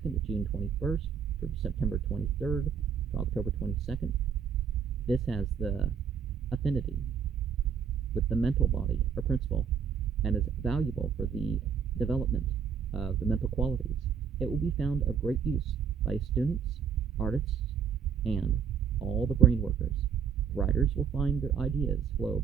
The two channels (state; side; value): quieter; left; 7.2 dB